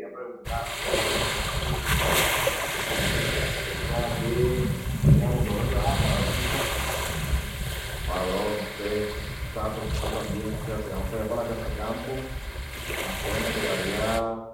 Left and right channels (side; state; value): both; identical; correlation 1.00